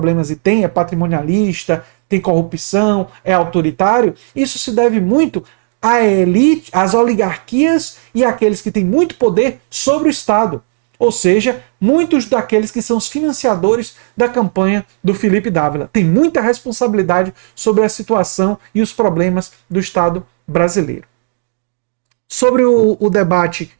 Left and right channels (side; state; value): left; silent; 55 dB below the other